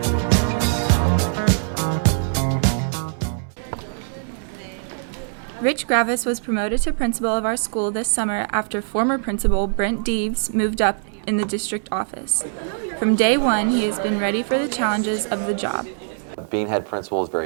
Rich Graviss was promoted to principal of our school this summer after former principal Brent Deves moved up in the district office. From day one, he has been ready for the challenges of the job. Being head principal is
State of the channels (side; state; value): left; silent; 63 dB below the other